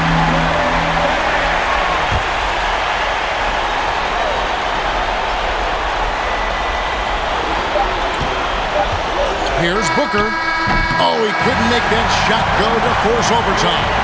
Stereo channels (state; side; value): identical; both; correlation 1.00